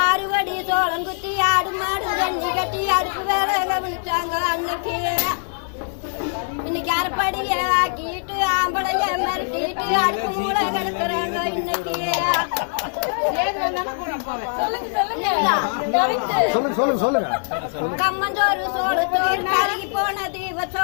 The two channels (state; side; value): silent; right; digital silence